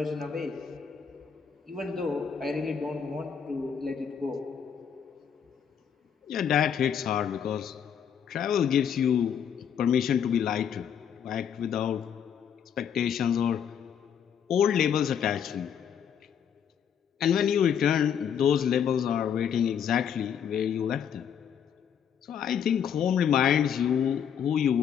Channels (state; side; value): quieter; right; 8.1 dB